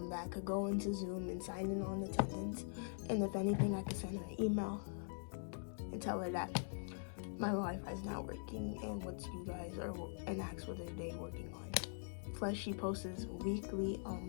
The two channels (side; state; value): right; silent; digital silence